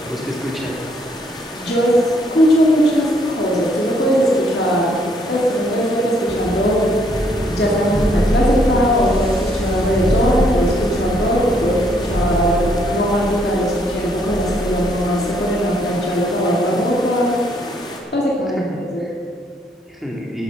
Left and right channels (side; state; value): both; normal; correlation 0.69